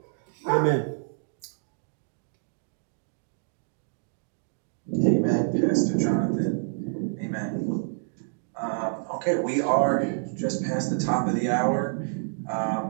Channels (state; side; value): silent; left; digital silence